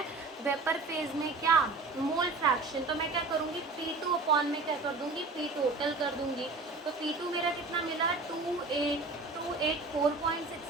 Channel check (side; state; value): left; quieter; 3.6 dB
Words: वेपर फेज में क्या, मोल फ्रैक्शन। तो मैं क्या करूँगी, P2 अपॉन में क्या कर दूँगी, P टोटल कर दूँगी। तो P2 मेरा कितना मिला,